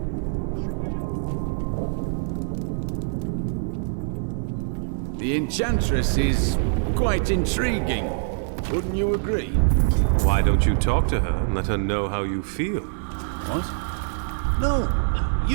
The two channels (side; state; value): left; silent; digital silence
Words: The Enchantress is quite intriguing. Wouldn't you agree? Why don't you talk to her and let her know how you feel? What? No,